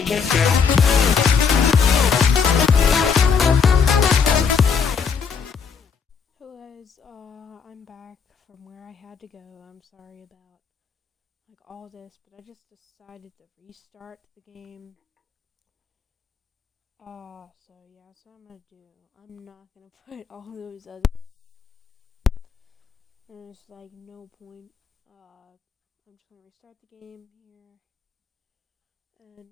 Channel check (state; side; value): quieter; right; 6.0 dB